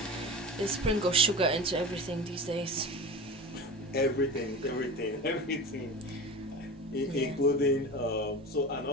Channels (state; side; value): normal; both; correlation 0.31